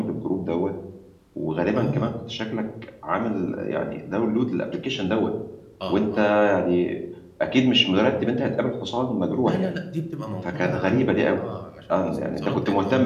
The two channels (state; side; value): identical; both; correlation 1.00